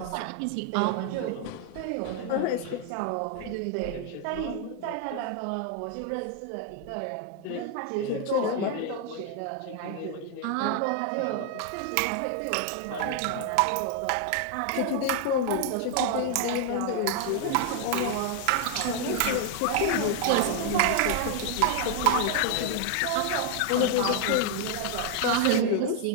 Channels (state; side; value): different; both; correlation 0.00